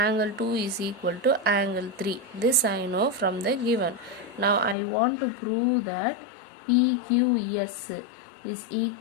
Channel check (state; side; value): drops out; right; at 4.8 s